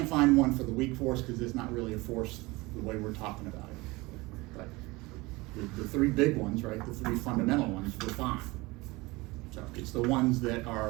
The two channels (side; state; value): left; quieter; 22.7 dB